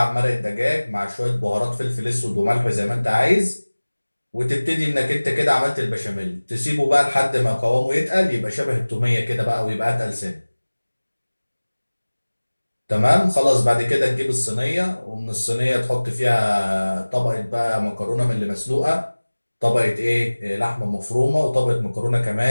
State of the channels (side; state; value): both; inverted; correlation -1.00